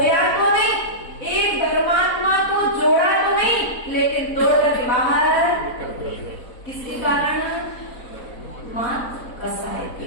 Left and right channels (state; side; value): late; right; 4.0 ms